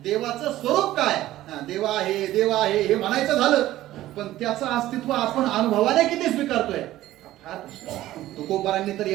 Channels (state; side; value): quieter; left; 14.9 dB